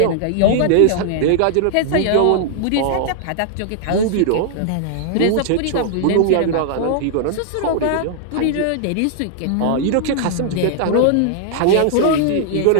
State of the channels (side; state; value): both; different; correlation -0.01